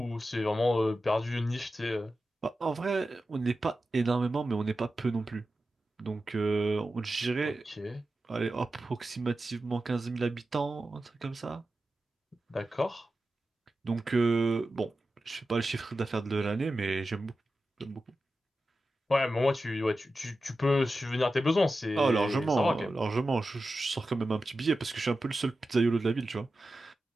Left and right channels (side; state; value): both; normal; correlation 0.92